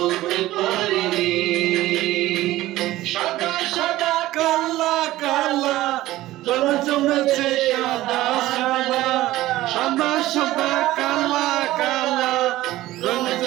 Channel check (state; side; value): quieter; left; 16.2 dB